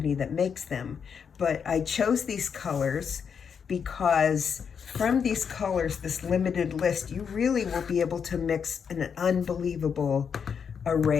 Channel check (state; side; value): quieter; right; 6.8 dB